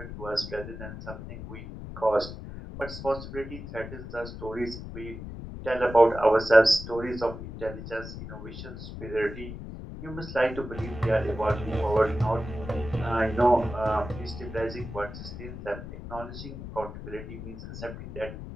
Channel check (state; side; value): noise; left; rumble, 10 dB below the sound